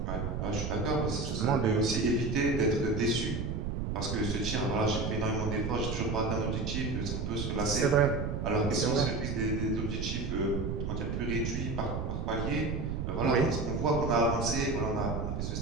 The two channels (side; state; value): right; noise; rumble, 2 dB below the sound